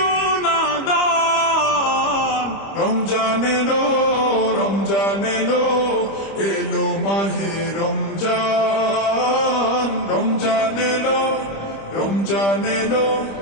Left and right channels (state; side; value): late; right; 25 ms